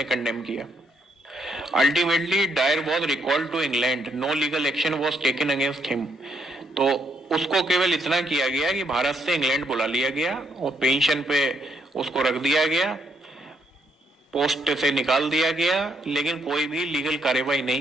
कंडेम किया। Ultimately Dyer was recalled to England, no legal action was taken against him. तो उसको केवल इतना किया गया कि भारत से इंग्लैंड बुला लिया गया और पेंशन पे उसको रख दिया गया, पोस्ट से निकाल दिया गया, लेकिन कोई भी लीगल कार्यवाही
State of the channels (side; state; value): both; normal; correlation 0.74